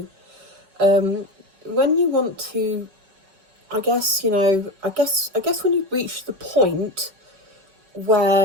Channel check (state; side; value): late; left; 5.2 ms